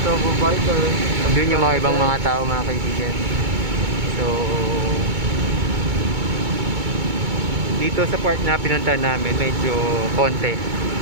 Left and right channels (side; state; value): left; late; 2.2 ms